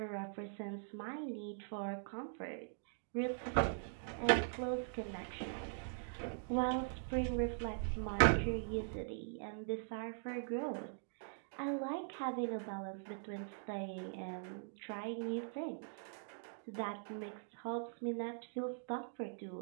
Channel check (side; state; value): left; silent; digital silence